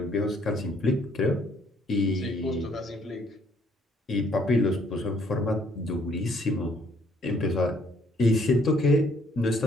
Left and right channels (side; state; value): both; normal; correlation 0.65